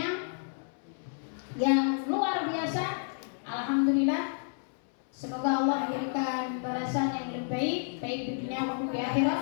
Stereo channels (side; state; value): right; silent; 57 dB below the other